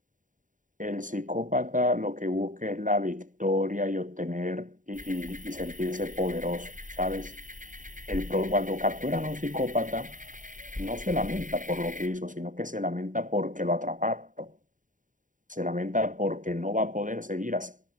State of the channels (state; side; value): late; left; 0.38 ms